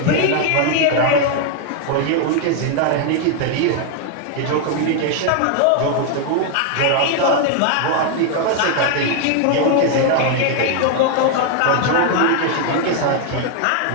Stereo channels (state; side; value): different; both; correlation 0.00